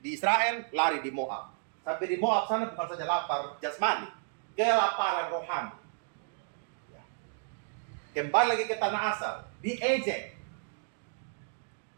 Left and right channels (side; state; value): left; silent; digital silence